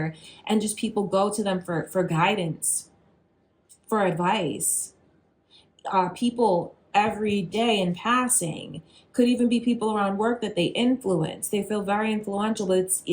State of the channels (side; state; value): both; identical; correlation 1.00